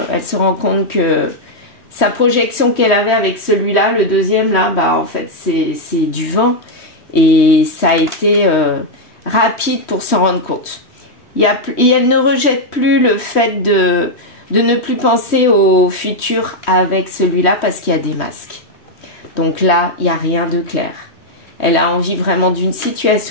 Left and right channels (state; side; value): late; right; 3.1 ms